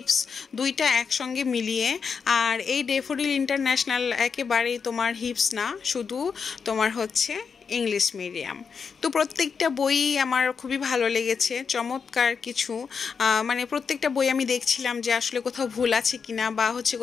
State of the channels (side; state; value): right; quieter; 5.9 dB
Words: দুইটা একসঙ্গে মিলিয়ে। আর এই ডেফোডিল ইন্টারন্যাশনাল একেবারেই তোমার হিপস না, শুধু তোমার হচ্ছে ইংলিশ মিডিয়াম। তো প্রত্যেকটা বই আমার খুবই ভালো লেগেছে, চমৎকার কিছু। মানে প্রত্যেকটা বই আমি দেখছিলাম যে আসলে কোথাও ভুল আছে কিনা, বা হচ্ছে